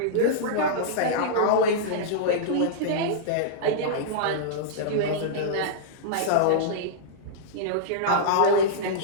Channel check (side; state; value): both; different; correlation -0.03